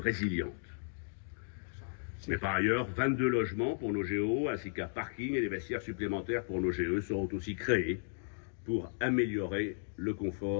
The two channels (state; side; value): silent; right; digital silence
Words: Mais par ailleurs, 22 logements pour nos GO, ainsi qu'un parking et des vestiaires supplémentaires pour nos GE seront aussi créés pour améliorer le